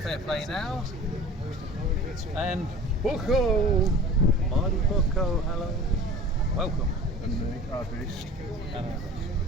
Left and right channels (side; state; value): both; normal; correlation 0.41